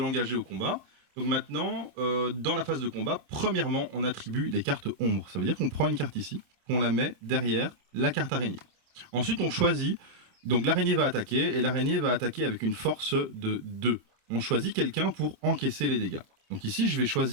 au combat. Donc maintenant, dans la phase de combat, premièrement, on attribue des cartes ombres. Ça veut dire qu'on prend une carte ici, qu'on la met derrière la carte araignée. Ensuite, on choisit, donc l'araignée va attaquer, et l'araignée va attaquer avec une force de 2. On choisit quelqu'un pour encaisser les dégâts. Donc ici, je vais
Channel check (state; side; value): late; left; 27 ms